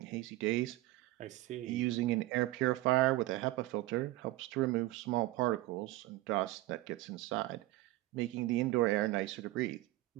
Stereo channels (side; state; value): left; quieter; 18.3 dB